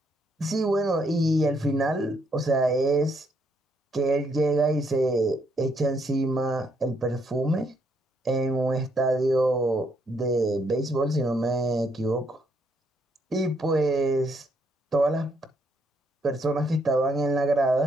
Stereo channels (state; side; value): normal; both; correlation 0.73